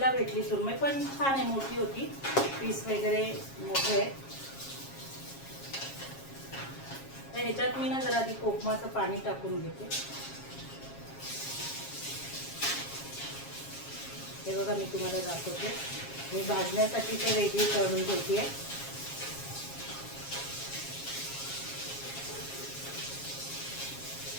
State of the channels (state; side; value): late; right; 7.4 ms